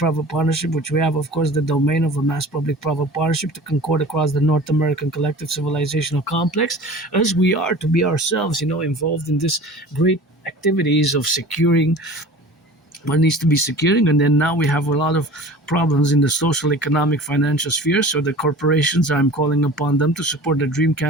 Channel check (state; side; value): normal; both; correlation 0.40